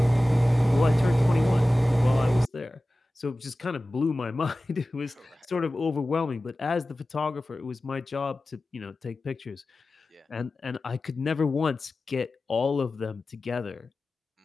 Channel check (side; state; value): both; normal; correlation 0.96